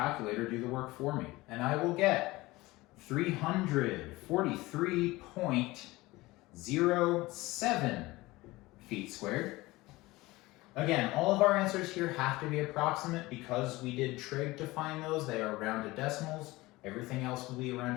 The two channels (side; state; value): right; quieter; 20.2 dB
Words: do the work for me. And I will get 343.07 feet squared. Again, all of our answers here have to be approximate because we did trig to find those. They are rounded decimals. Everything else will be a